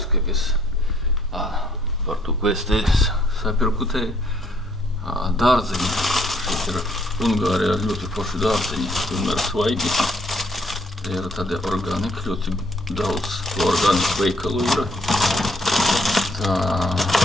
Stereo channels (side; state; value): both; normal; correlation 0.66